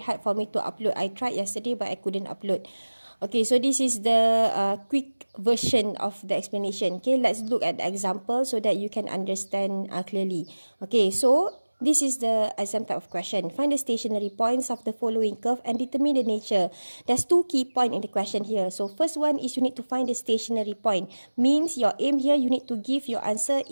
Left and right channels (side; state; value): both; inverted; correlation -1.00